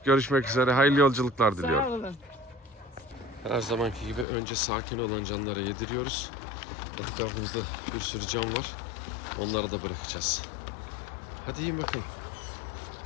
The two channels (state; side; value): drops out; right; at 4.2 s